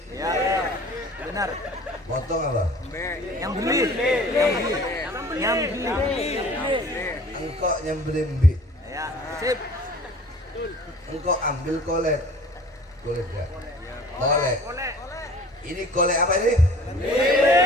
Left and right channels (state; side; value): normal; both; correlation 0.47